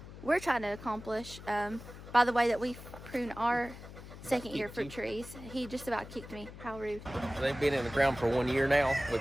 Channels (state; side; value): noise; left; hum, 14 dB below the sound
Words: we're trying to accomplish. By the way that we prune our second year fruit trees. He just about kicked me. How rude. They've been in the ground for 1 year now. We